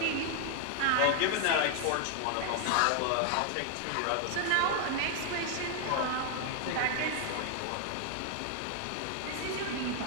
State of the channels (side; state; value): both; different; correlation 0.00